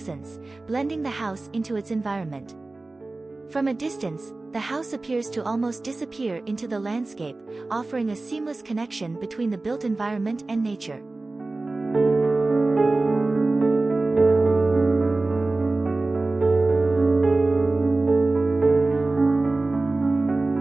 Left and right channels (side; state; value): left; quieter; 3.2 dB